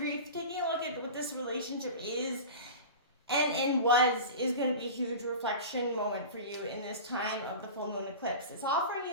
taking a look at what this relationship is and is going to be a huge reflection moment for you in this time of the full moon eclipse. It's offering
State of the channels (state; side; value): inverted; both; correlation -0.32